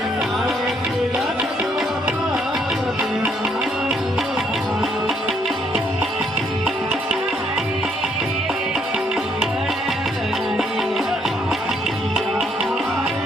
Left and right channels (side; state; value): both; normal; correlation 0.70